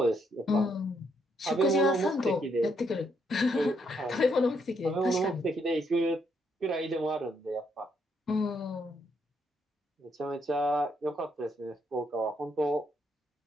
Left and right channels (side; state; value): both; normal; correlation 0.75